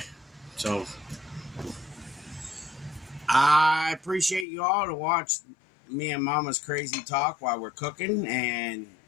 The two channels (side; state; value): right; drops out; at 4.5 s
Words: So, I appreciate you all to watch me and Mama's crazy talk while we're cooking, and